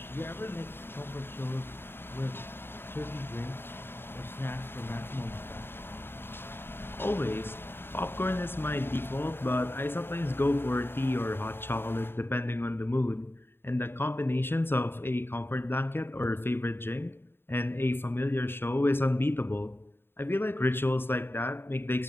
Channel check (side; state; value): right; late; 0.11 ms